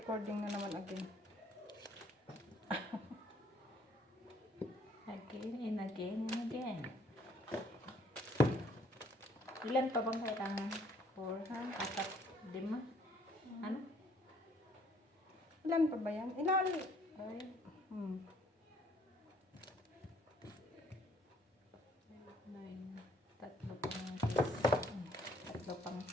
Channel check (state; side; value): normal; both; correlation 0.62